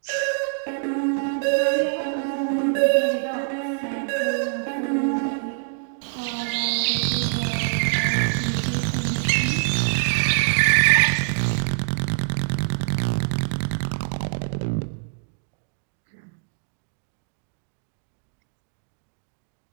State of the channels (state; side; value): silent; left; digital silence